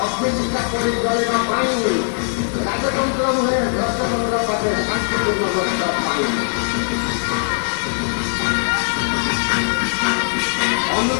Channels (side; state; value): right; silent; digital silence